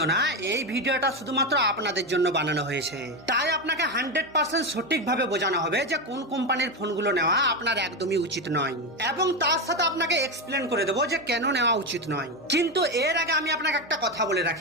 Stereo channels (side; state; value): both; normal; correlation 0.13